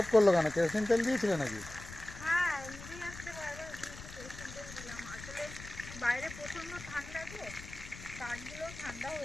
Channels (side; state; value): left; noise; rumble, 13 dB below the sound